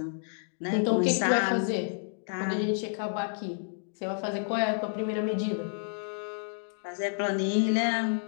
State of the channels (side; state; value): right; silent; 58 dB below the other